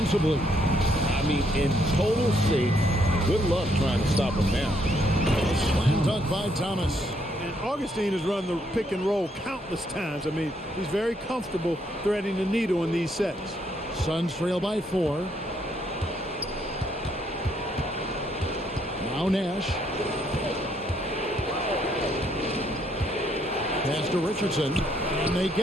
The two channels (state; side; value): normal; both; correlation 0.72